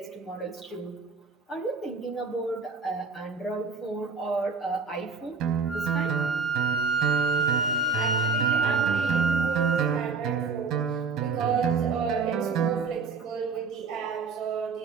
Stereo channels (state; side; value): quieter; left; 4.9 dB